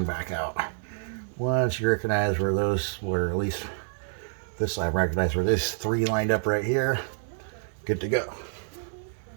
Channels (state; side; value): silent; left; 59 dB below the other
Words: back out. Once you recognize where those were, at least this side recognize where this three lined up right here, good to go.